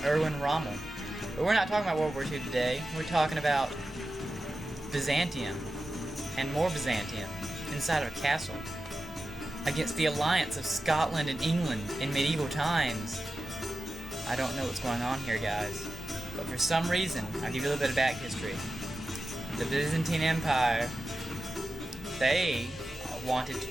Erwin Rommel. But we're not talking about World War II today. We're talking about Byzantium. And more Byzantium inside of a castle against the alliance of Scotland and England in medieval times. I don't know what's going on here, guys, but for some reason, I'll give you a little bit of back history. The Byzantine Empire, they wanted to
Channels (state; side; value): normal; both; correlation 0.92